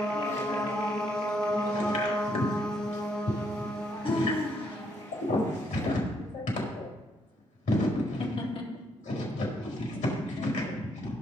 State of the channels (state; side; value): normal; both; correlation 0.73